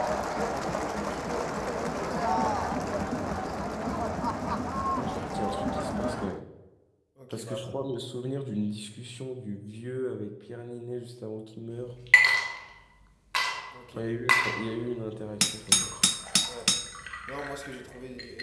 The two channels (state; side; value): identical; both; correlation 1.00